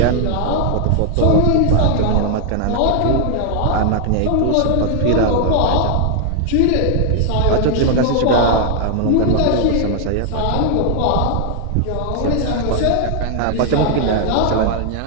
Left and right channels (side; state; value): both; different; correlation 0.00